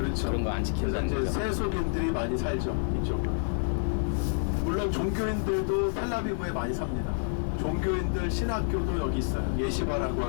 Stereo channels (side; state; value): right; silent; 56 dB below the other